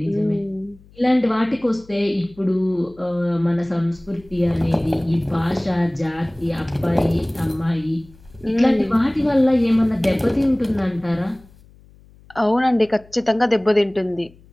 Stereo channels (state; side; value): noise; left; hum, 26 dB below the sound